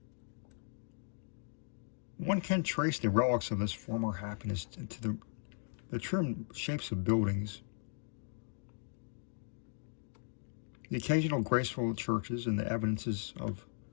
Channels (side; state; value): right; silent; digital silence